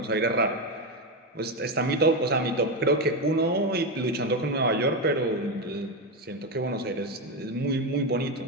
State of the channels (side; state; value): both; normal; correlation 0.11